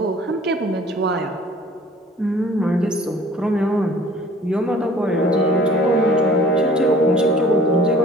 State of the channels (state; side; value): normal; both; correlation 0.51